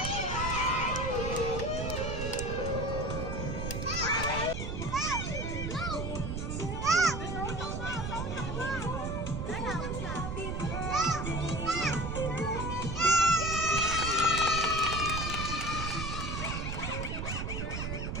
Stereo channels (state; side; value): noise; right; rumble, 3 dB below the sound